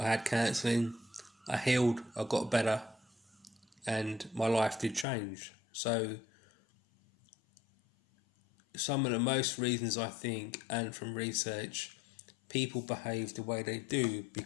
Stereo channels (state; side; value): drops out; right; at 5.1 s